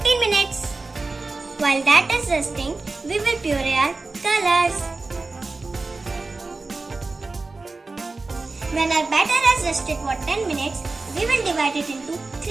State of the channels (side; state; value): left; quieter; 3.6 dB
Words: minutes. While that is resting, we will puree our colors. When our batter has rested for 10 minutes, we will divide it into